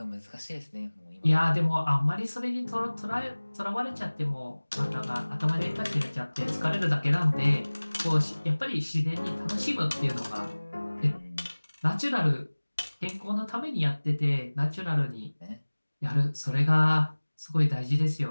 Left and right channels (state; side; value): inverted; both; correlation -1.00